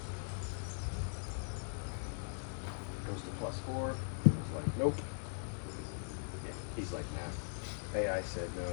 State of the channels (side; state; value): right; silent; digital silence